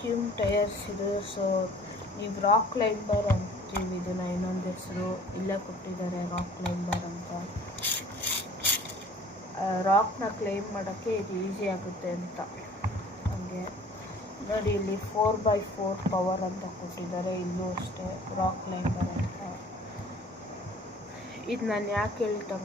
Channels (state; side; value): normal; both; correlation 0.50